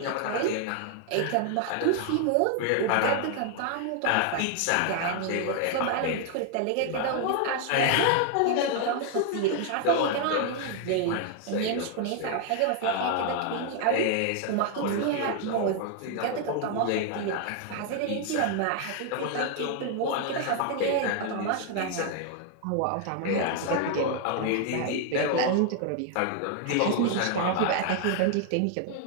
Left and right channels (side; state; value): both; different; correlation 0.00